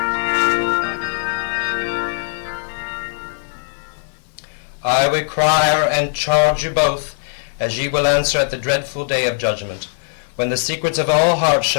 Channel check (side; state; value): right; silent; 59 dB below the other